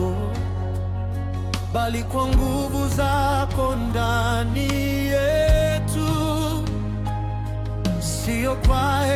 bali kwa nguvu zako ndani yetu. Sio kwa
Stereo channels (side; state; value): both; identical; correlation 1.00